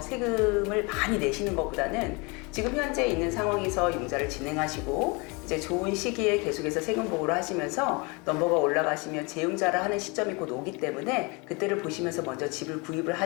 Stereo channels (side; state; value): right; quieter; 28.8 dB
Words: 많이 내시는 것보다는 지금 현재 있는 상황에서 융자를 진행하시고 이제 좋은 시기에 계속해서 세금 보고를 하시면서 넘버가 올라가시면 재융자를 하는 시점이 곧 오기 때문에 그때를 보시면서 먼저 집을 구입을